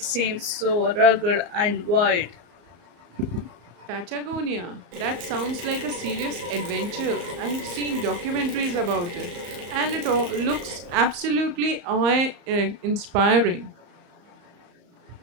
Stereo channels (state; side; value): late; left; 34 ms